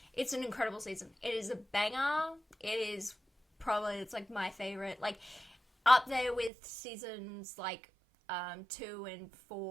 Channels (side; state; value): left; drops out; at 6.5 s